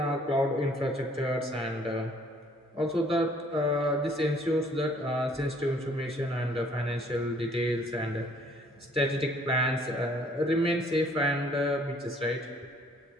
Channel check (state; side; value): normal; both; correlation 0.60